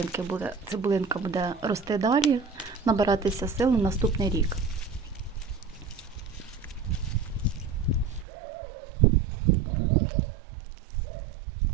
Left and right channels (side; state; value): left; drops out; at 8.2 s